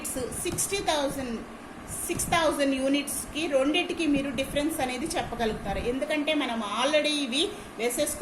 6,000 యూనిట్స్కి రెండింటికి మీరు డిఫరెన్స్ అనేది చెప్పగలుగుతారు. ఎందుకంటే మనం ఆల్రెడీ ఇవి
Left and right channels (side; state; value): both; identical; correlation 1.00